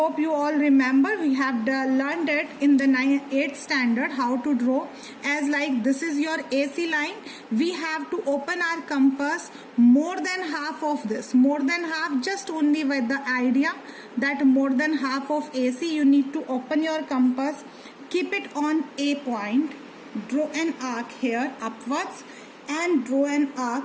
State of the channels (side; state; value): both; identical; correlation 1.00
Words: you all remember, we have learned it in the 8th standard how to draw. As like this is your AC line, we have to open our compass more than half of this. More than half, just only with the idea that more than half of AC, you need to open your compass, keep it on A point. Draw an arc here upwards and draw an arc